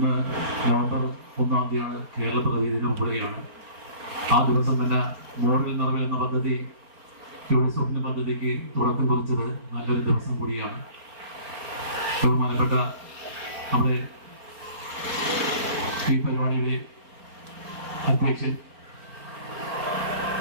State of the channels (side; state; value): left; late; 4.4 ms